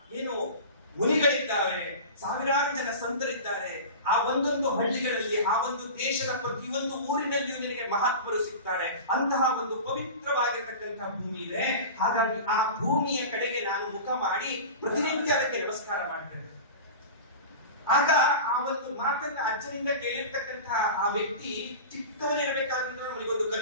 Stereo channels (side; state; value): both; inverted; correlation -0.32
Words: ಏನು ಮುನಿಗಳಿದ್ದಾರೆ, ಸಾವಿರಾರು ಜನ ಸಂತರಿದ್ದಾರೆ. ಆ ಒಂದೊಂದು ಹಳ್ಳಿಗಳಲ್ಲಿ, ಆ ಒಂದು ದೇಶದ ಪ್ರತಿಯೊಂದು ಊರಿನಲ್ಲಿಯೂ ನಿನಗೆ ಮಹಾತ್ಮರು ಸಿಗ್ತಾರೆ. ಅಂತಹ ಒಂದು ಪವಿತ್ರವಾಗಿರ್ತಕ್ಕಂತಹ ಭೂಮಿ ಇದೆ. ಹಾಗಾಗಿ ಆ ಭೂಮಿಯ ಕಡೆಗೆ ನಾನು ಮುಖ ಮಾಡಿ ಪ್ರತಿನಿತ್ಯ ಅದಕ್ಕೆ ನಮಸ್ಕಾರ ಮಾಡ್ತೇನೆ. ಆಗ ಆ ಒಂದು ಮಾತನ್ನ ಅಜ್ಜನಿಂದ ಕೇಳಿರ್ತಕ್ಕಂತಹ ಆ ವ್ಯಕ್ತಿ ಚಿಕ್ಕವನಿರಬೇಕಾದ್ರೆ ಅವನಿಗೊಂದು